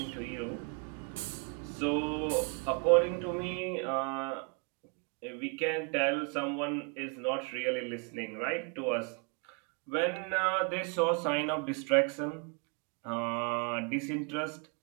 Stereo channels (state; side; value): quieter; left; 35.1 dB